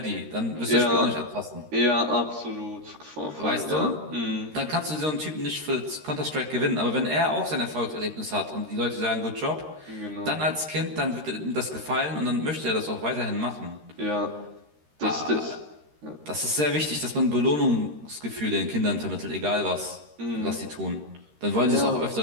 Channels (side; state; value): left; late; 13 ms